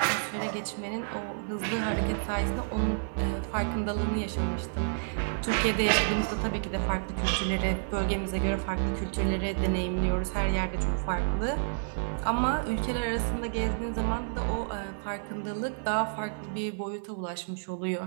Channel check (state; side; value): silent; left; 58 dB below the other